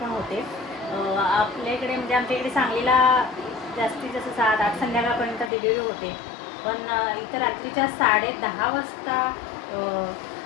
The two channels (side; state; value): right; drops out; at 5.5 s